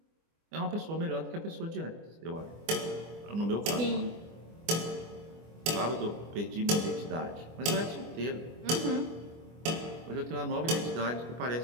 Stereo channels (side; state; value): left; late; 24 ms